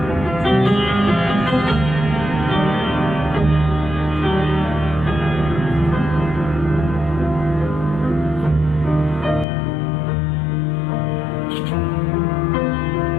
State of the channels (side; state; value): right; drops out; at 9.5 s